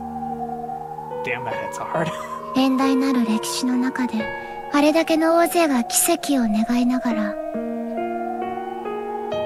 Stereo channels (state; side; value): identical; both; correlation 1.00